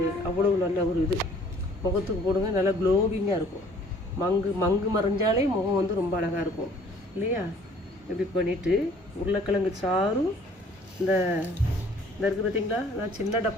அவ்வளோ நல்ல ஒரு இது. முகத்துக்கு போடுங்க, நல்லா க்ளோவிங்காக இருக்கும். மங்கு மறைஞ்சாலே முகம் வந்து ரொம்ப அழகாக இருக்கும் இல்லையா? இப்படி பண்ணிவிட்டு உருளைக்கிழங்கு சாறும் இந்த இருக்குது பார்த்தீங்களா? நான் சின்ன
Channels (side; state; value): both; normal; correlation 0.56